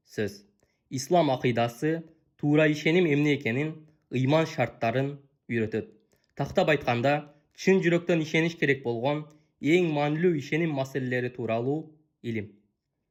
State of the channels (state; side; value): identical; both; correlation 1.00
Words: сөз. Ислам акыйдасы туура ишеним эмне экенин, ыйман шарттарын үйрөтөт. Тактап айтканда, чын жүрөктөн ишениш керек болгон эң маанилүү ишеним маселелери тууралуу илим.